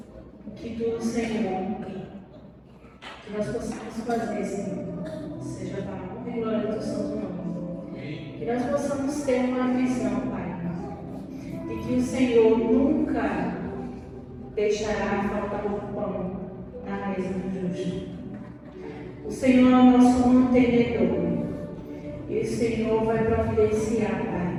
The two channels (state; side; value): identical; both; correlation 1.00